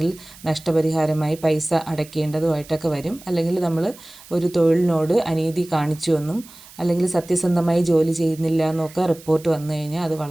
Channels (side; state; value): right; noise; hiss, 21 dB below the sound